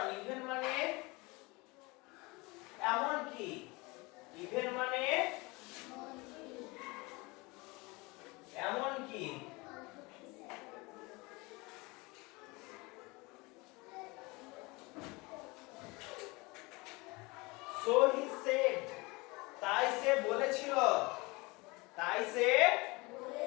even মানে এমন কি, even মানে এমন কি। so he said, তাই সে বলেছিল, তাই সে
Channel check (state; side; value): quieter; right; 24.9 dB